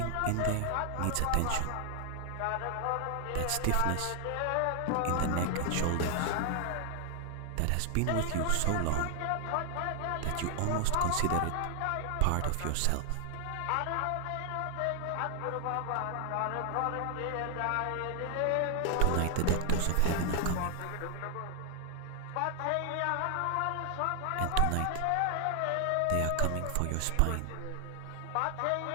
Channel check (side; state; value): both; different; correlation 0.00